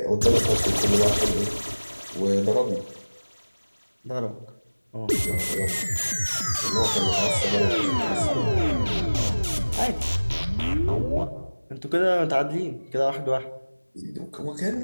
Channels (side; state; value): both; inverted; correlation -1.00